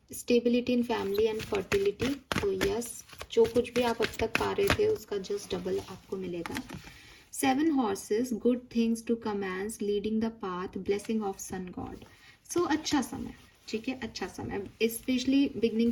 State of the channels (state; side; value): identical; both; correlation 1.00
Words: stability in family and fertility. तो यस, जो कुछ भी आप अब तक पा रहे थे उसका जस्ट डबल आपको मिलेगा। 7 horses, good things to commence, leading the path, blessing of sun God. So अच्छा समय, ठीक है, अच्छा समय, स्पेशली बिगनिंग